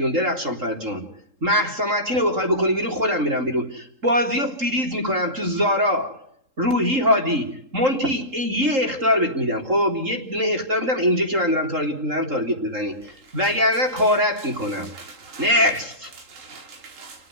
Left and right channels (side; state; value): left; late; 3.7 ms